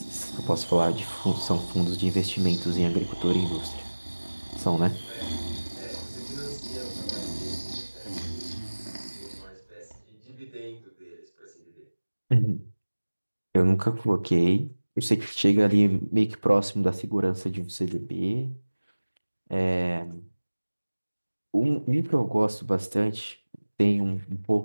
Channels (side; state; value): both; inverted; correlation -1.00